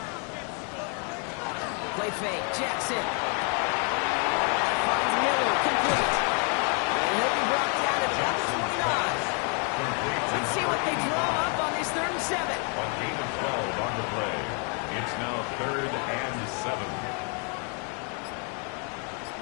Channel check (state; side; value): quieter; right; 38.8 dB